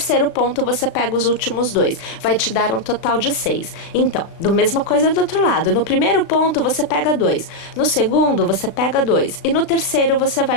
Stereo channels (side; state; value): right; late; 36 ms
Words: ponto você pega os últimos 2. Vai te dar um total de 6. Então, do mesma coisa do outro lado. No primeiro ponto você pega 2, no segundo você pega 2 e no terceiro você